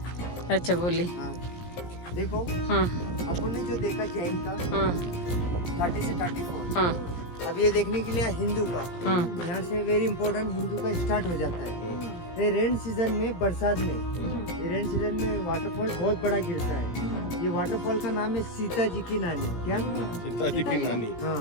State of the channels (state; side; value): late; right; 17 ms